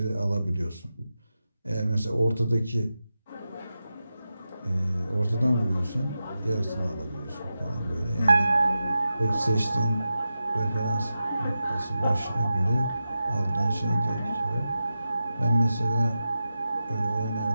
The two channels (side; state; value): both; inverted; correlation -0.92